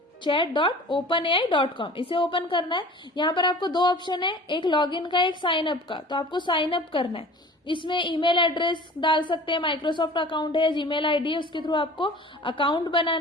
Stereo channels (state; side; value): normal; both; correlation 0.43